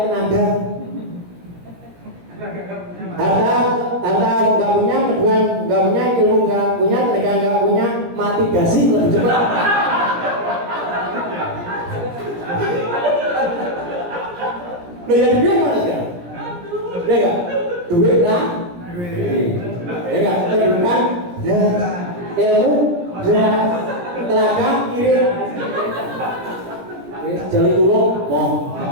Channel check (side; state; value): left; late; 17 ms